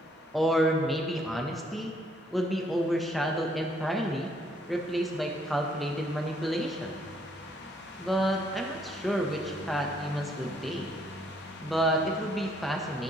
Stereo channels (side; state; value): both; normal; correlation 0.67